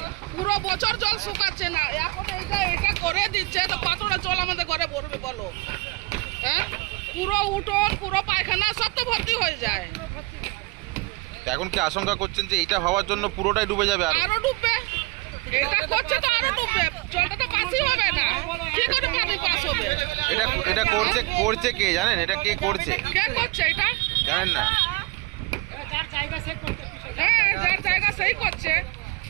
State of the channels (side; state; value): left; quieter; 22.6 dB